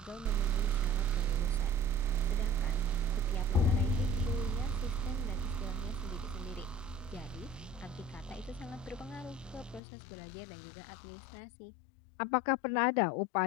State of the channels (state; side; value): drops out; right; at 9.8 s